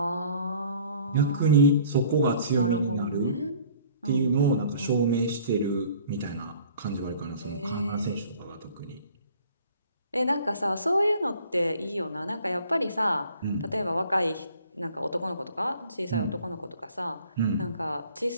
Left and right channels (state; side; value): inverted; both; correlation -0.52